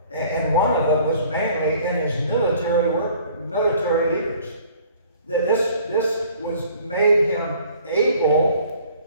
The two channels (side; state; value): both; inverted; correlation -0.53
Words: And one of them was mainly in his military work, military leaders. This was made him